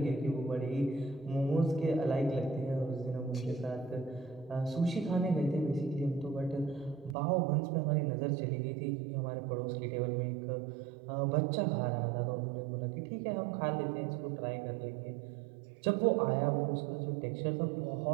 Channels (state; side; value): drops out; left; at 7.2 s